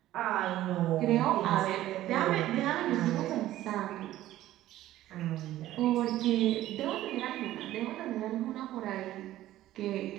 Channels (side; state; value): left; quieter; 14.3 dB